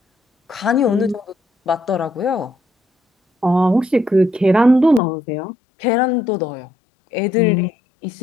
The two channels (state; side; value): drops out; right; at 5.0 s